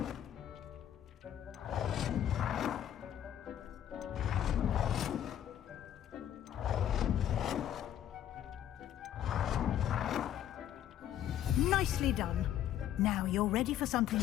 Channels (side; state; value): right; quieter; 10.8 dB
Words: Nicely done. Now you're ready for something